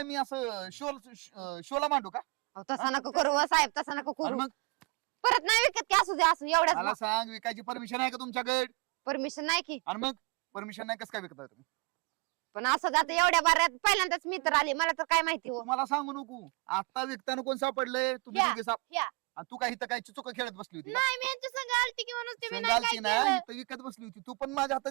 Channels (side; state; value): left; quieter; 30.9 dB